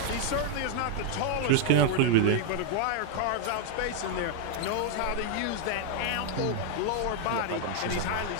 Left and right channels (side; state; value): both; different; correlation 0.00